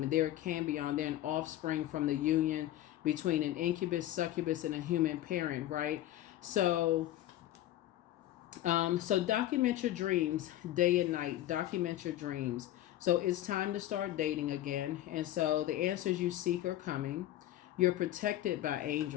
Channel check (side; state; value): right; quieter; 13.6 dB